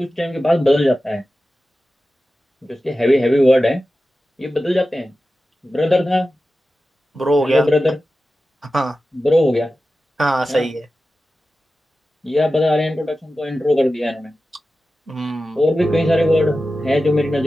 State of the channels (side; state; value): both; normal; correlation 0.94